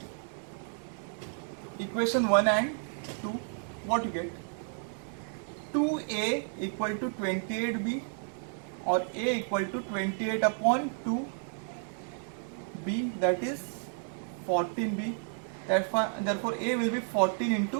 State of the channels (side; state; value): left; silent; 57 dB below the other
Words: equation 1 and 2. What you get? 2A equal to 28B, or A equal to 28 upon 2B, that is 14B. Therefore A will be 14